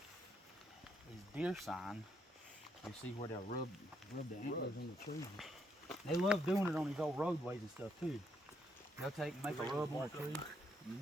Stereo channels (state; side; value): normal; both; correlation 0.75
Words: is deer sign. You see where they'll rub the antlers in the trees. They love doing it on these old roadways and stuff too. They'll take and make a rub on a tree.